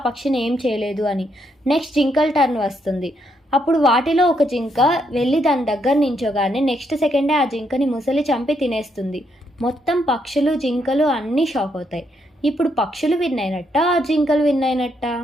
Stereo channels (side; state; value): both; normal; correlation 0.76